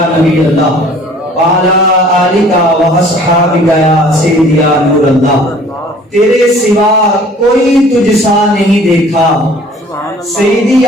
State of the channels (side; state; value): both; normal; correlation 0.52